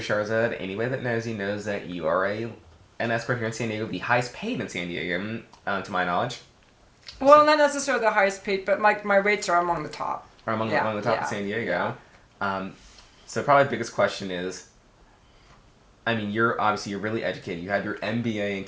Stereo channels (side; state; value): both; identical; correlation 1.00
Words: anybody that knows you knows that you are an escort here in San Diego, the highest paid in San Diego, to my knowledge. Well, not necessarily the highest paid, but my rates are among the top. Or among the top of San Diego. Yeah. So probably the biggest question is, I mean, you're really educated. You have your MBA in